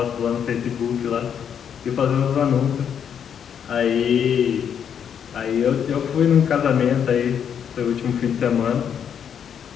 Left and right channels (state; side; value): quieter; right; 8.2 dB